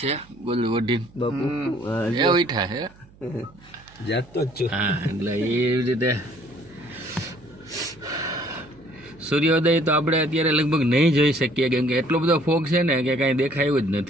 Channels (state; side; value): noise; right; hum, 26 dB below the sound